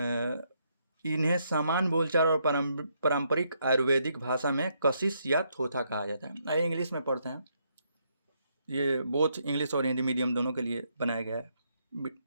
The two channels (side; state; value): both; inverted; correlation -0.75